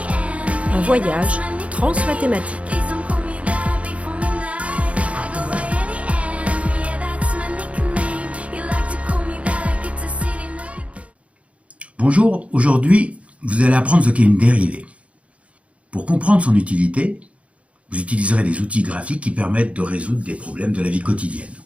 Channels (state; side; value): late; left; 0.063 ms